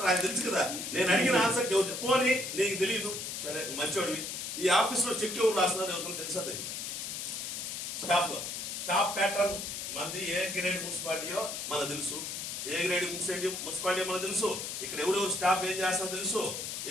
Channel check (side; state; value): left; noise; hiss, 5 dB below the sound